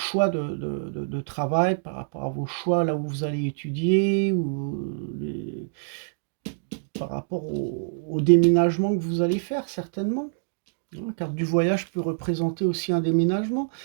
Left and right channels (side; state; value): left; silent; digital silence